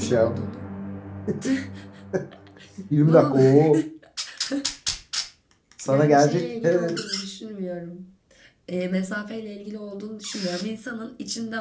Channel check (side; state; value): both; identical; correlation 1.00